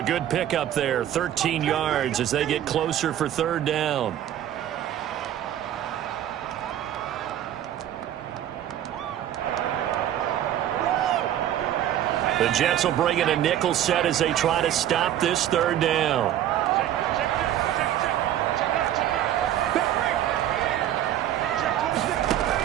good pickup there, 13 yards as they get closer for 3rd down. The Jets will bring in a nickel set as they try to stop this 3rd down.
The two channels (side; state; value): left; quieter; 11.5 dB